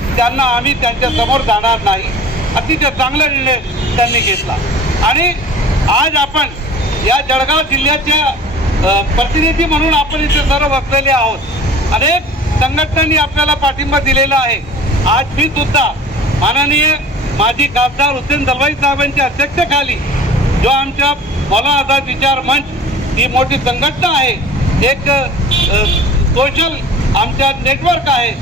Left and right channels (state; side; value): normal; both; correlation 0.44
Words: त्यांना आम्ही त्यांच्या समोर जाणार नाही। अतिशय चांगला निर्णय त्यांनी घेतला। आणि आज आपण या जळगाव जिल्ह्याच्या प्रतिनिधी म्हणून आपण इथे सर्व बसलेले आहोत। अनेक संघटनांनी आपल्याला पाठिंबा दिलेला आहे। आज मी सुद्धा माननीय माजी खासदार हुसेन दलवाई साहेबांच्या अध्यक्षतेखाली जो आमच्या मौलाना आझाद विचार मंच ही मोठी संघटना आहे, एक सोशल आमच्या नेटवर्क आहे,